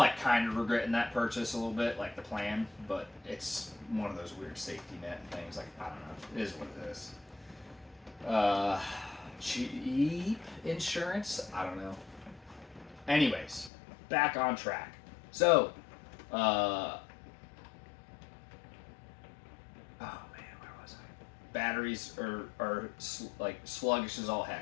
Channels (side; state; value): right; drops out; at 13.7 s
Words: kind of regretting that purchase a little bit, like the plan, but it's one of those weird safety net things. Like I don't know, it is what it is. Cheap insurance? I don't know. Anyways, back on track. So, oh man, where was I? Batteries are like sluggish as all